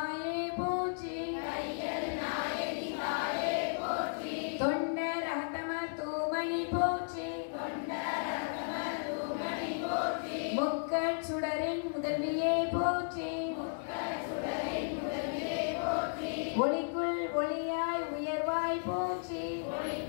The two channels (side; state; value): right; silent; digital silence